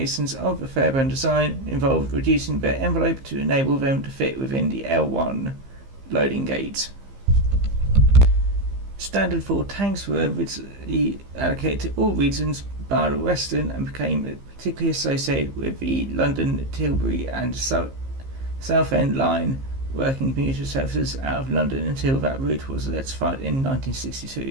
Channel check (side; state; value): left; late; 15 ms